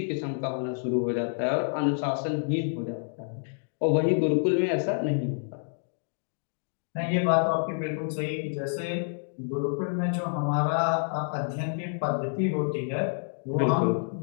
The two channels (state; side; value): silent; right; 59 dB below the other